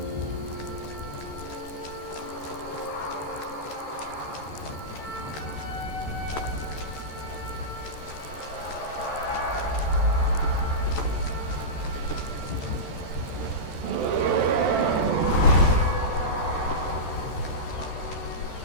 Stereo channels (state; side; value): late; right; 14 ms